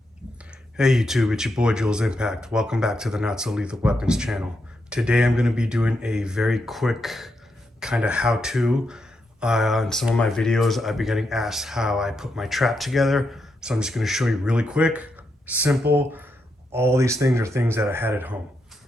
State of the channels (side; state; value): both; normal; correlation 0.83